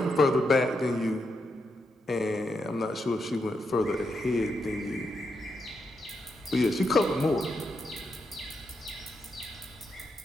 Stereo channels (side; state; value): both; normal; correlation 0.83